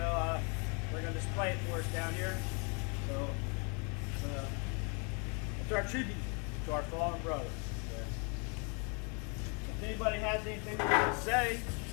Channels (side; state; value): right; quieter; 35.2 dB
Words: display it for us down here. So, it's our tribute to our fallen brothers. Okay? If anybody has anything they want to say,